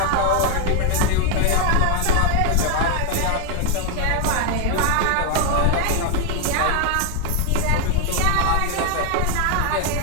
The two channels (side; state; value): both; different; correlation 0.01